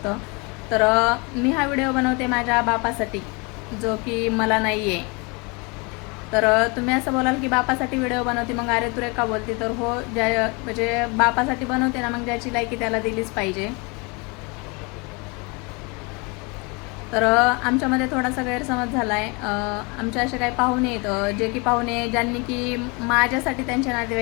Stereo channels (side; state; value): right; quieter; 29.4 dB